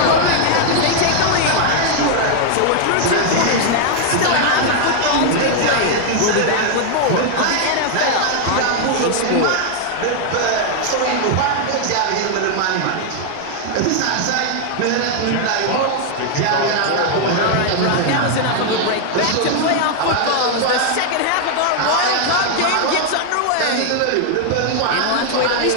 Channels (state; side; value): different; both; correlation 0.00